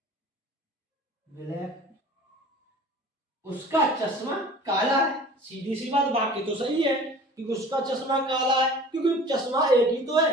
ब्लैक, उसका चश्मा काला है। सीधी सी बात, बाकी तो सही है क्योंकि उसका चश्मा काला है, क्योंकि चश्मा एक ही तो है,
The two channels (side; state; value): both; normal; correlation 0.44